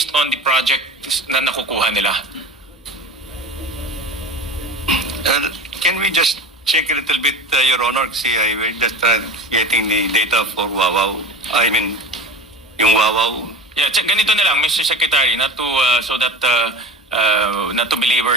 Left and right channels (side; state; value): both; normal; correlation 0.31